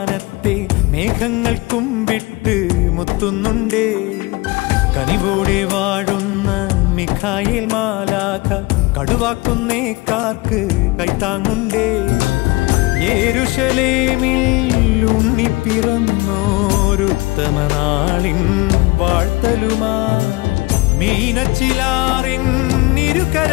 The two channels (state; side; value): quieter; right; 22.5 dB